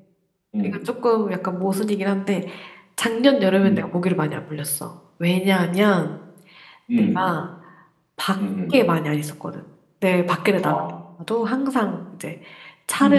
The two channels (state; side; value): identical; both; correlation 1.00